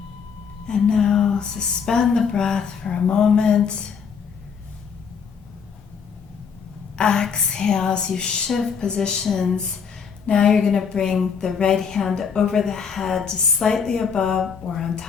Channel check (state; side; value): quieter; right; 6.4 dB